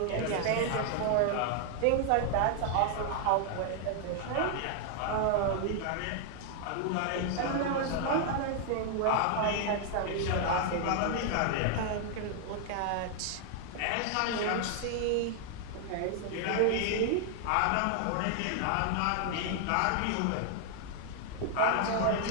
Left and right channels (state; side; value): different; both; correlation 0.00